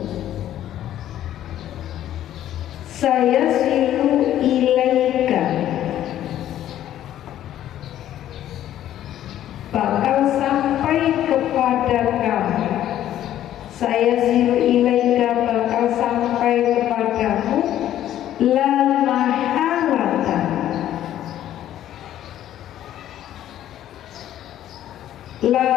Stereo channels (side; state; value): right; quieter; 12.0 dB